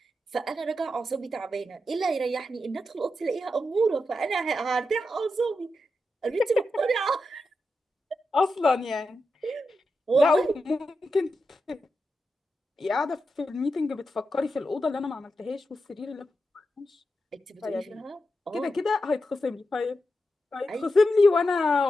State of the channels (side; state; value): both; normal; correlation 0.88